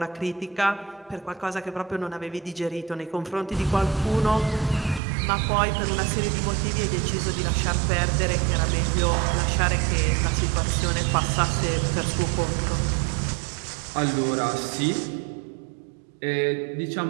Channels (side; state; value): left; drops out; at 5.0 s